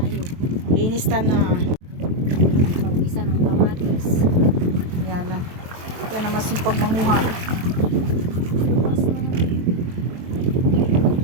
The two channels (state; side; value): late; left; 23 ms